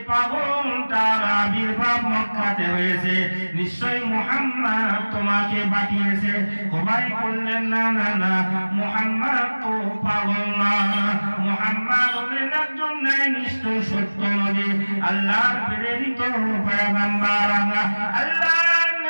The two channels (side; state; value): both; inverted; correlation -1.00